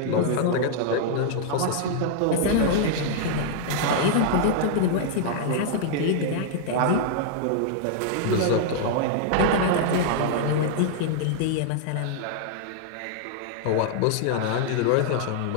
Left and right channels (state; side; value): different; both; correlation -0.01